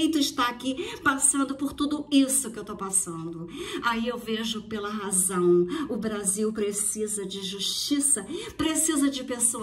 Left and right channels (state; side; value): identical; both; correlation 1.00